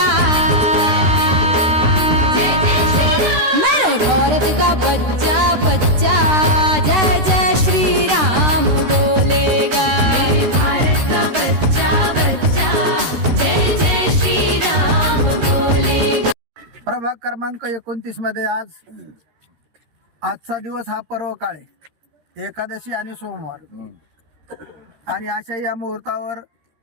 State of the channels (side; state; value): left; late; 13 ms